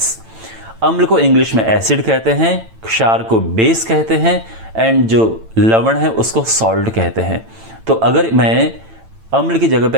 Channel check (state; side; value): late; left; 9.0 ms